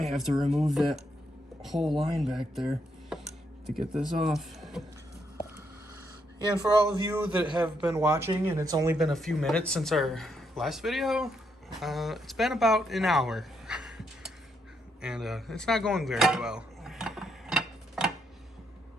have to remove that whole line back there to get this off. Yeah, and for all of you that have been watching, and it's only been a few minutes since our last video, it's been about an hour. And it's not going very well.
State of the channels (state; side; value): normal; both; correlation 0.77